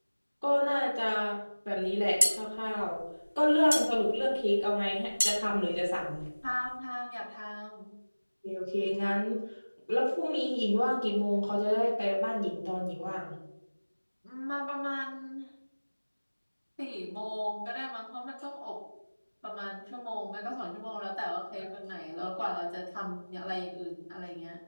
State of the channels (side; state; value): both; inverted; correlation -1.00